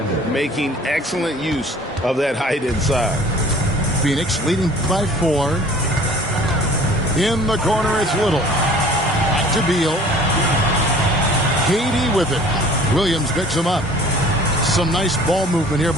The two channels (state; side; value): normal; both; correlation 0.49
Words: making excellent use of that height inside. Phoenix leading by 4. In the corner, it's Little. Back to Beal. KD with it. Williams picks him up. Some nice ball movement here